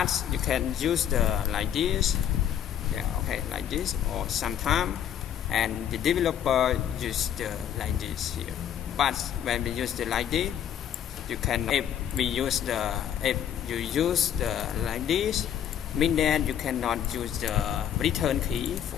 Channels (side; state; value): right; quieter; 9.7 dB